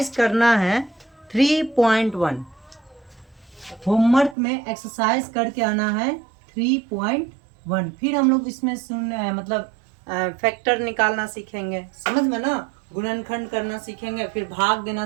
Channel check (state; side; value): drops out; left; at 4.4 s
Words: करना है 3.1, होमवर्क में एक्सरसाइज करके आना है 3.1। फिर हम लोग इसमें मतलब फैक्टर निकालना सीखेंगे, समझ में ना? गुणनखंड करना सीखेंगे, फिर भाग देना